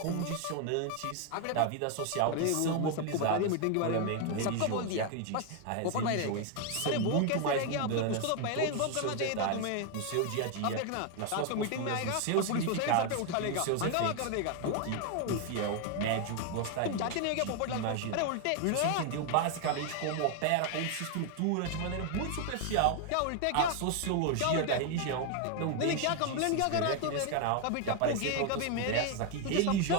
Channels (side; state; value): both; different; correlation 0.01